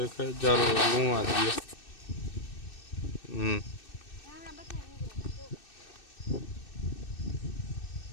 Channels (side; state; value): right; late; 2.6 ms